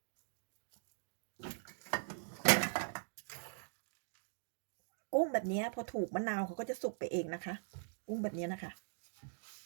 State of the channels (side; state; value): left; silent; digital silence